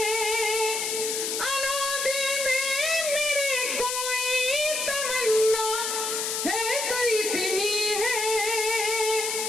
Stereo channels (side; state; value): left; noise; hiss, 1 dB below the sound